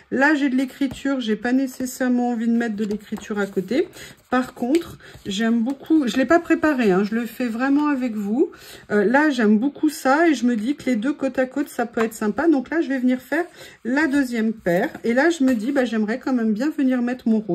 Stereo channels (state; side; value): identical; both; correlation 1.00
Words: Là, j'ai de l'écriture. J'ai pas nécessairement envie de mettre de l'écriture à côté. Par contre, j'aime beaucoup... Je ne l'ai pas préparé, hein, je le fais vraiment avec vous. Là, j'aime beaucoup ça et je me dis que les deux côte à côte, ça peut être sympa. Donc là, je vais venir faire la deuxième paire. Et là, je me dis, bah, j'aimerais quand même bien venir mettre mon